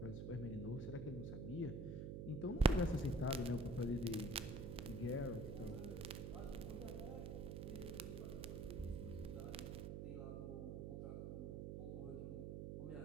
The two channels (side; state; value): right; noise; hum, 4 dB below the sound